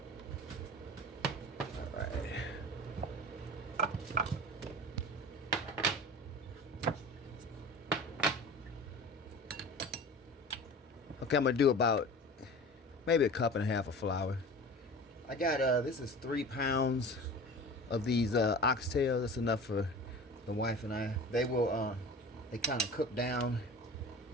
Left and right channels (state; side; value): normal; both; correlation 0.37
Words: Okay, I'm gonna do about maybe a cup and a half of flour. I got this is 3 pounds of these oxtails. That's enough for the wife and I. They will they kind of cook down